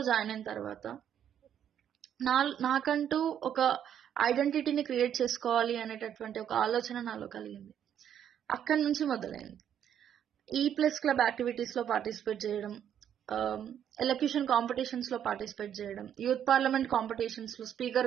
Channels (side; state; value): left; quieter; 9.5 dB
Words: జాయిన్ అయిన తర్వాత నాకంటూ ఒక ఐడెంటిటీని క్రియేట్ చేసుకోవాలి అనేటటువంటి ఒక ఆలోచన నాలో కలిగింది. అక్కడి నుంచి మొదలైంది. E+ క్లబ్ యాక్టివిటీస్ లో పార్టిసిపేట్ చేయడం, ఎలక్యూషన్ కాంపిటీషన్స్ లో పార్టిసిపేట్ చేయడం, యూత్ పార్లమెంట్ కాంపిటీషన్స్ లో